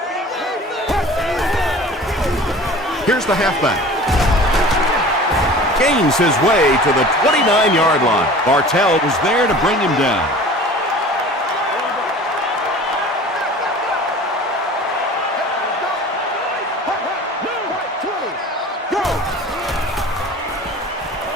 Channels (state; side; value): normal; both; correlation 0.42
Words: Here's the halfback. Gains his way to the 29-yard line. Bartell was there to bring him down.